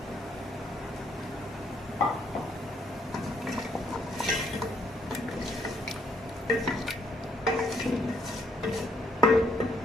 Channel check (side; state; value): both; normal; correlation 0.70